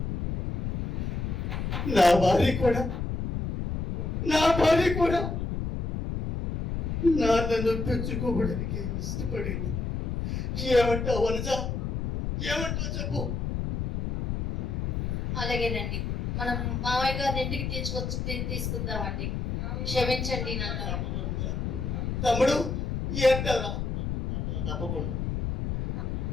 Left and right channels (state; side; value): noise; left; rumble, 2 dB below the sound